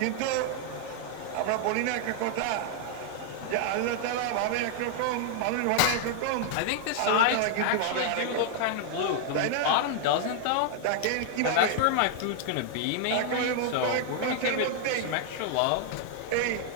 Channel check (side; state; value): both; different; correlation 0.00